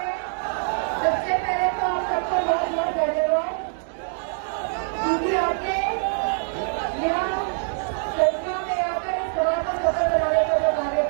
सबसे पहले तो आप सबको बहुत बहुत धन्यवाद, क्योंकि आपने यहाँ संख्या में आकर इस सभा को सफल बनाने का जो कार्य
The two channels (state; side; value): silent; left; digital silence